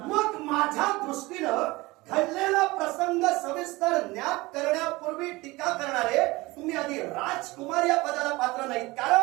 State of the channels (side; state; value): left; quieter; 21.4 dB